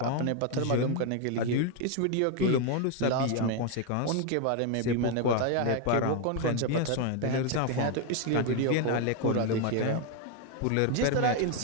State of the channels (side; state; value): both; different; correlation 0.01